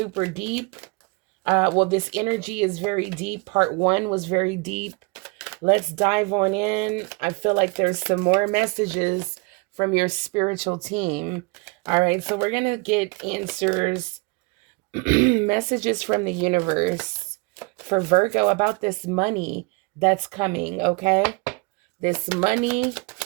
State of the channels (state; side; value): quieter; left; 29.1 dB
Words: deep. This energy is very deep. Part one was very deep. Let's dive on in. I feel like there's some more messages from your spiritual team. All right, so we're going to get answers, messages from the universe for Virgo about this money that's coming, okay? This money